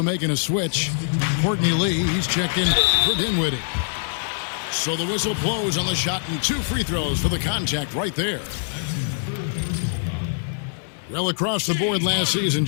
making a switch. Courtney Lee, he's checked in for Dinwiddie. So the whistle blows on the shot and 2 free throws for the contact right there. Well, across the board last season,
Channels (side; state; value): right; silent; digital silence